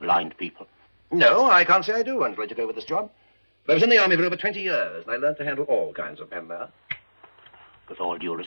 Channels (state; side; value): inverted; both; correlation -1.00